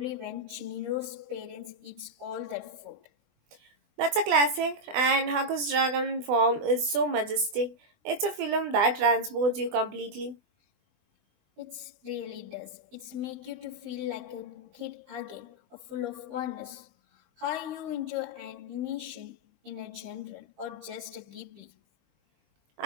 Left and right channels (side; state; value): left; late; 20 ms